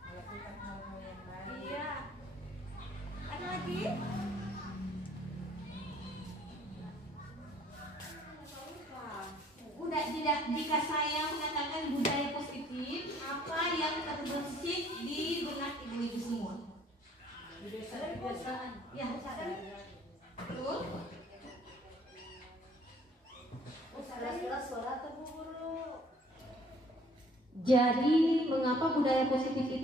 Melakukan hal-hal yang baik. Iya. Ada lagi? Udah, tidak, jika saya mengatakan budaya positif, apa yang terbesit di benak ibu-ibu semua? Kebiasaan. Ya, betul. Suara atau guru. Jadi, mengapa budaya positif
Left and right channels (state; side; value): normal; both; correlation 0.59